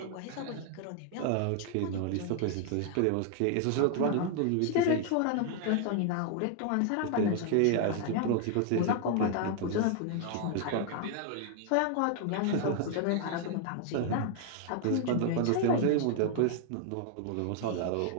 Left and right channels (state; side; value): different; both; correlation 0.00